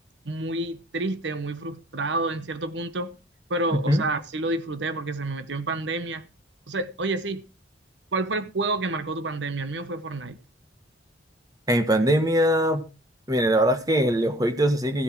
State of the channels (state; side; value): normal; both; correlation 0.48